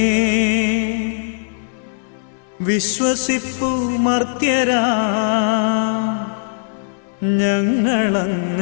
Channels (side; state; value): right; silent; digital silence